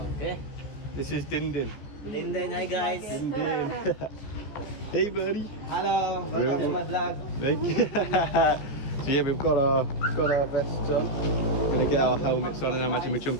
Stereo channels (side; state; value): right; late; 15 ms